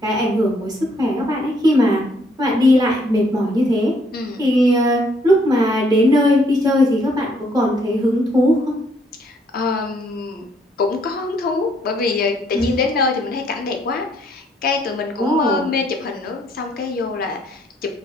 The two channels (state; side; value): normal; both; correlation 0.68